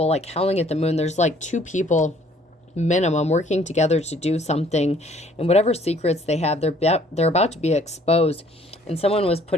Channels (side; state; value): both; normal; correlation 0.59